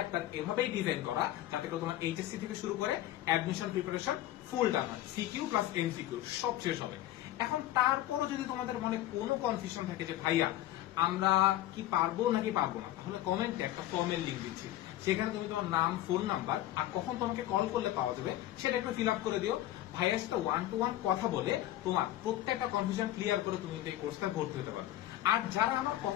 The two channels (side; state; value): right; quieter; 14.2 dB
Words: এভাবেই ডিজাইন করা যাতে করে তোমার এইচএসসি থেকে শুরু করে অ্যাডমিশন প্রিপারেশন ফুল ডান হয়, সিকিউ প্লাস এমসিকিউ সব শেষ হবে। এখন তারপরও যদি তোমাদের মনে কোনো কনফিউশন থাকে যে ভাইয়া আমরা কি পারবো নাকি পারবো না, তাহলে কমেন্টে একটা ফর্মের লিঙ্ক দিচ্ছি, সেখানে তুমি তোমার নাম, ফোন নাম্বার আর কখন তোমাকে কল করলে পাওয়া যাবে সেটা একটু ফিল আপ করে দিও। ভাইয়ার সাথে 1-to-1 কথা বলে তোমার প্রত্যেকটা কনফিউশন ক্লিয়ার করে তুমি এই কোর্সটা ভর্তি হতে পারো। আর যারা আমার